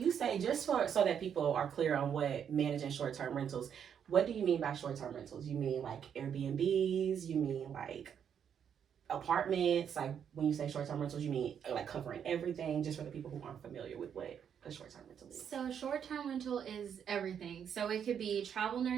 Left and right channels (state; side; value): quieter; left; 8.2 dB